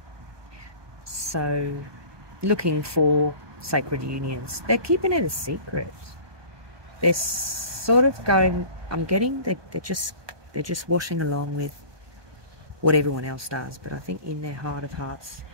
So looking for sacred unions. They're keeping it a secret. They're sort of going, I'm getting they're just washing along with what everyone else does, but I think in their heart of hearts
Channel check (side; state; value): left; late; 1.2 ms